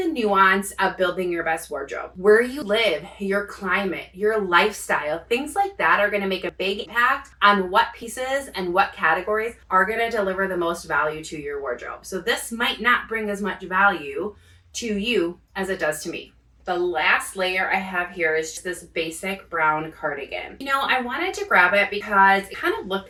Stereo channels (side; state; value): both; identical; correlation 1.00